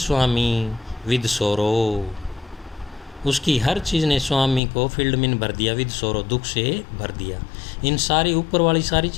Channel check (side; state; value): right; drops out; at 4.6 s